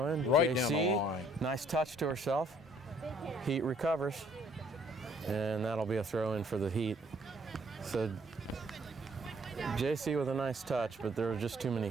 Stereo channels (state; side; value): normal; both; correlation 0.63